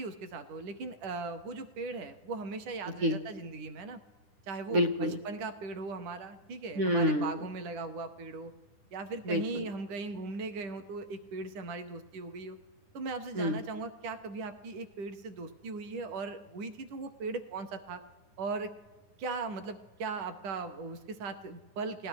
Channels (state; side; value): late; left; 9.9 ms